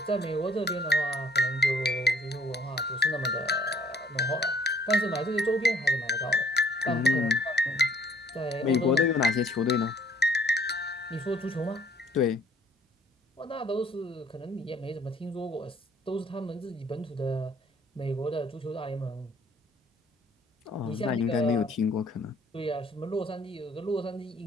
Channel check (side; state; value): both; normal; correlation 0.62